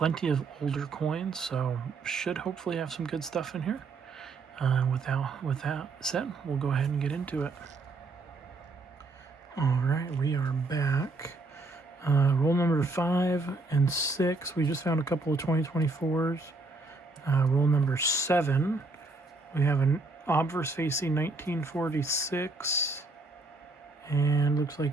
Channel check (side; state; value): left; quieter; 3.4 dB